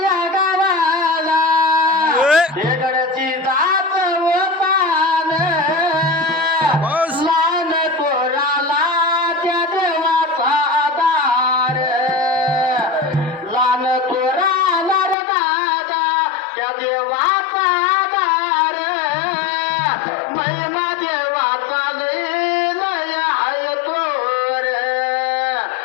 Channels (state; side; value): drops out; right; at 15.2 s